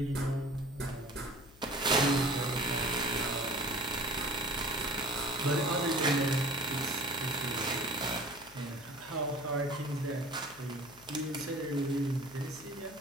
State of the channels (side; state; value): left; noise; hum, 24 dB below the sound